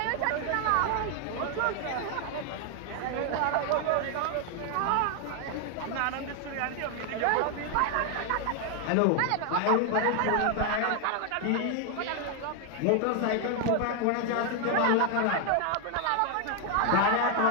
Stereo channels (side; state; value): both; different; correlation 0.01